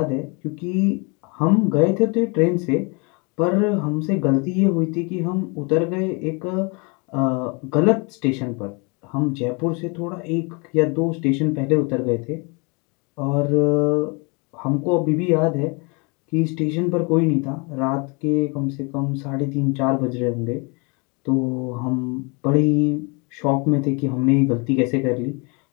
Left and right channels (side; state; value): right; quieter; 31.4 dB